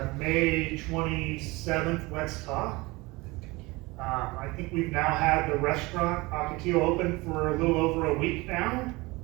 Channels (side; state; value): left; quieter; 23.1 dB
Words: May 27th Let's Talk. I think we've now had the restaurant Ocotillo open for a little over a week now.